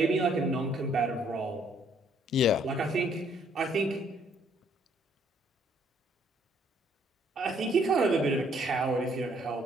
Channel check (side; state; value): both; normal; correlation 0.65